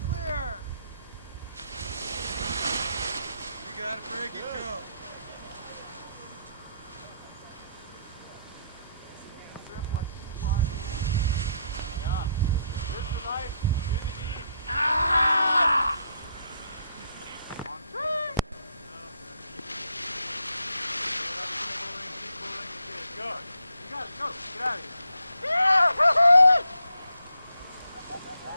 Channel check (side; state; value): both; inverted; correlation -0.74